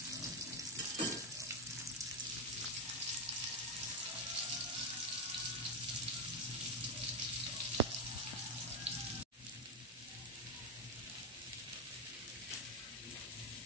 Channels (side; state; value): both; normal; correlation 0.07